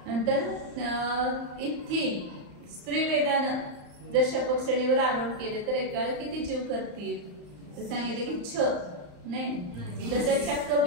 नंतर इथी स्त्री वेदानं जर शपक श्रेणीवर आरोहण केले तर एका वेळेला किती जीव करतील तर सांगितले की 6 नाही. जसं चक्क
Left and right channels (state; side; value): late; left; 34 ms